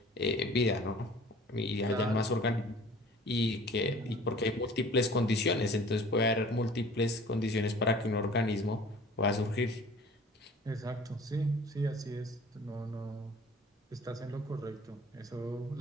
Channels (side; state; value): both; normal; correlation 0.47